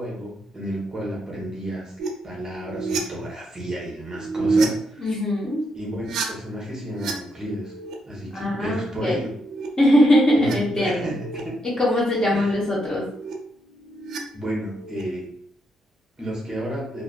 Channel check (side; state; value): both; normal; correlation 0.79